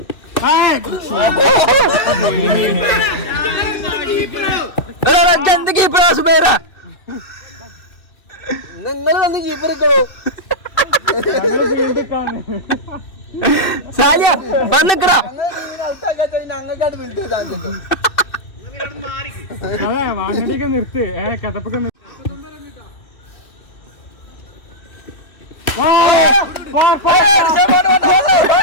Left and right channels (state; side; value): late; right; 2.6 ms